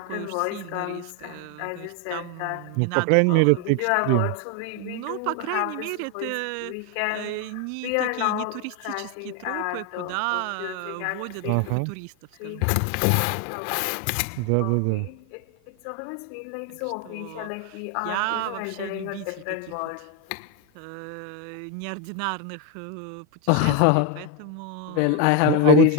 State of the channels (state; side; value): different; both; correlation 0.01